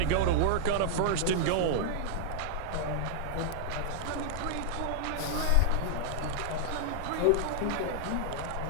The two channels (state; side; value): different; both; correlation 0.00